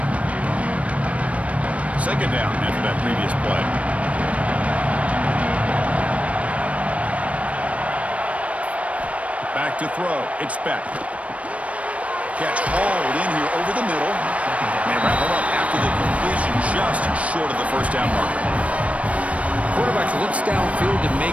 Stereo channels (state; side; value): late; left; 0.065 ms